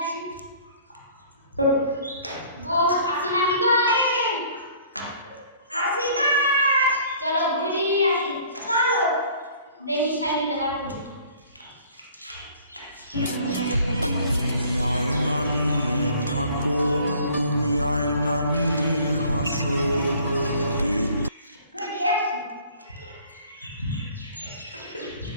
আসি গো আসো না কি গো আসি না চলো ঘুরিয়ে আসি চলো দেখি সাইডে দেবার করি আয়না নিয়ে থাকো তুমি আয়না নিয়ে হাসো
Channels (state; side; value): inverted; both; correlation -0.53